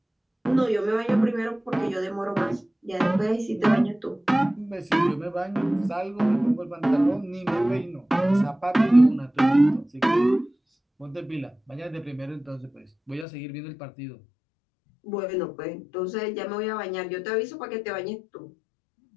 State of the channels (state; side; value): drops out; right; at 13.2 s